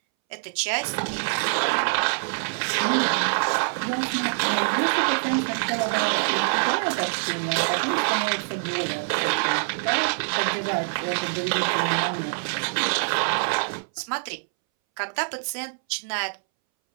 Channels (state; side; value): silent; left; 62 dB below the other